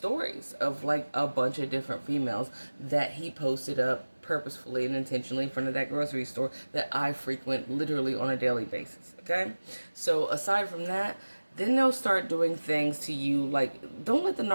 of like a bunch of different females that he posted up purposefully and intentionally in front of that grocery store that I frequent literally on a daily basis. Okay? So aside from that, then they'll start doing things to you like, don't let the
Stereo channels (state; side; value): inverted; both; correlation -1.00